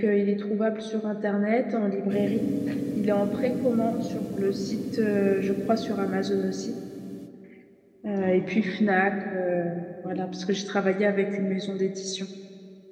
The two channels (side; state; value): both; identical; correlation 1.00